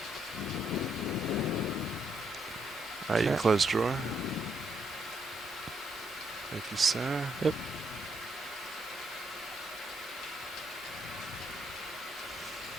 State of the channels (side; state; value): both; normal; correlation 0.76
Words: Alright, you can close drawer. Thank you, sir. Yep.